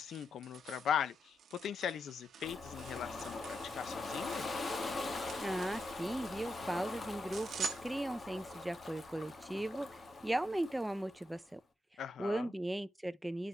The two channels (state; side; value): normal; both; correlation 0.85